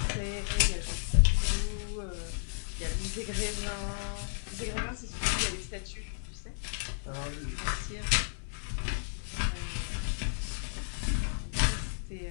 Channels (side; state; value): right; silent; digital silence